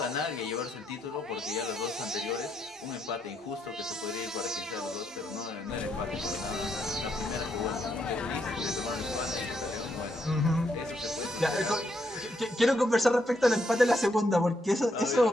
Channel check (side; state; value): both; normal; correlation 0.77